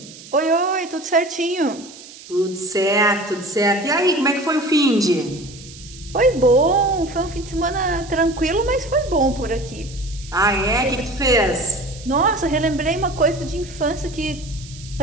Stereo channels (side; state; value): right; noise; hiss, 18 dB below the sound